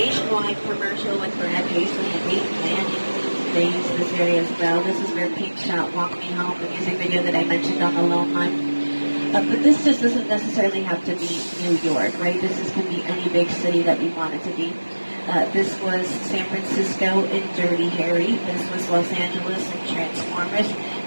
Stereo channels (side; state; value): both; inverted; correlation -1.00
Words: commercial with Brad Paisley and Peyton Manning. They use this area as well. This is where Pink shot Walk Me Home, the music video that I mentioned on the Lone Line. But this just doesn't necessarily have to be New York, right? Can be any big city that we want it to be. This was San Francisco in Dirty Harry. This was Los Angeles in Transformers.